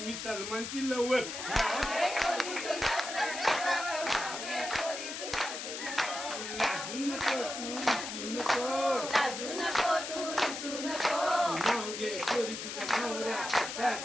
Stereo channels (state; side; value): noise; left; hiss, 6 dB below the sound